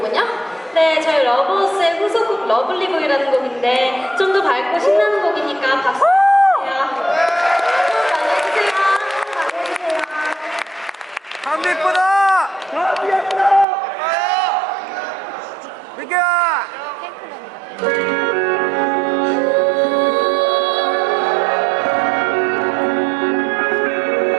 네, 저희 러버스의 후속곡 러블리보이라는 곡인데 좀 더 밝고 신나는 곡이니까 박수 주세요. 많이 해주세요. 많이 해주세요. 감기 예쁘다! 감기 예쁘다! 민규야!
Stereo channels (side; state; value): left; drops out; at 13.7 s